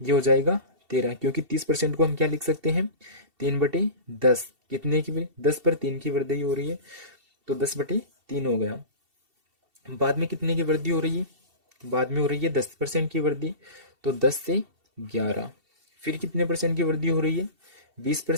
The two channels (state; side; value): late; left; 2.7 ms